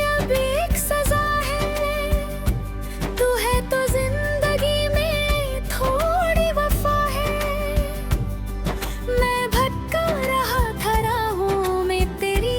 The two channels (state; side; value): identical; both; correlation 1.00